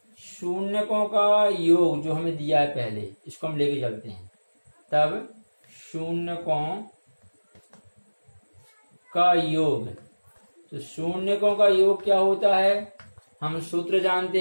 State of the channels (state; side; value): inverted; both; correlation -1.00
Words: शून्यकों का योग जो हमें दिया है पहले, इसको हम लेके चलते हैं। तब शून्यकों का योग, तो शून्यकों का योग क्या होता है, हम सूत्र जानते